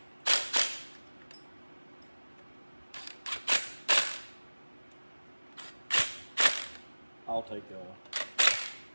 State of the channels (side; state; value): both; inverted; correlation -1.00